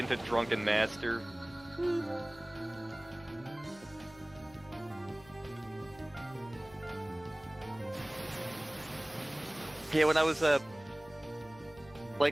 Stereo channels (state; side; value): noise; left; hum, 21 dB below the sound